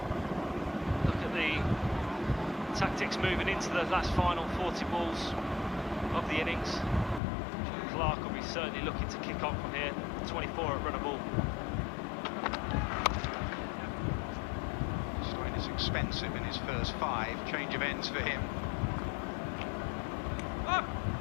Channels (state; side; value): drops out; right; at 7.2 s